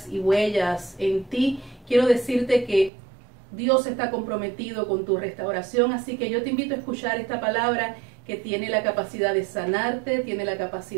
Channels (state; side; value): drops out; left; at 2.9 s